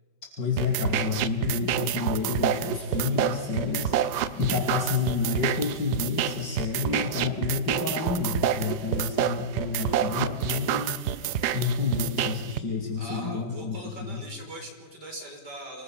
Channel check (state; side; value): late; right; 5.3 ms